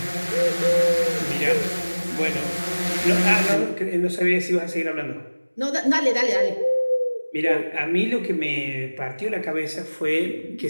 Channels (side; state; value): both; inverted; correlation -1.00